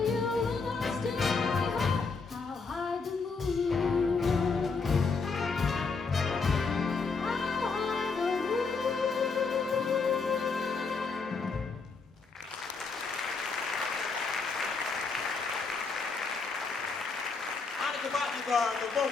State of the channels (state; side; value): quieter; right; 4.6 dB